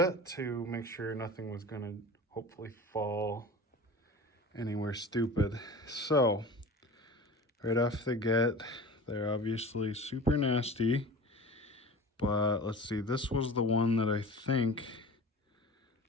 to make sure nothing was gonna hopefully fall anywhere stupid. So, right off the get, they're obviously super nasty, but let's see, this was the one that I think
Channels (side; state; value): both; normal; correlation 0.37